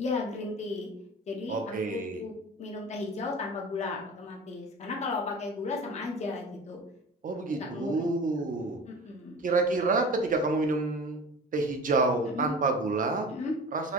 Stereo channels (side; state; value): both; normal; correlation 0.38